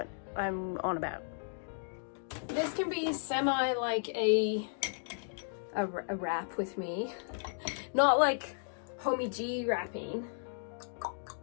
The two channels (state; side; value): silent; right; digital silence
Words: I'm on about. This can be semi like a wrap with me. Not like Homie G wrapping,